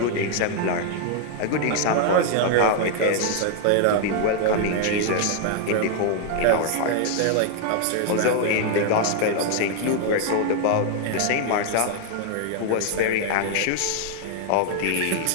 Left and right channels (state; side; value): different; both; correlation 0.00